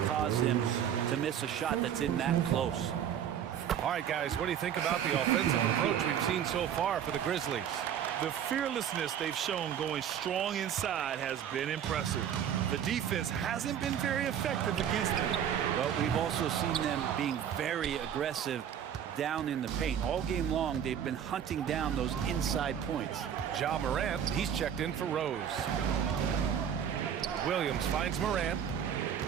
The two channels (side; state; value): left; quieter; 9.1 dB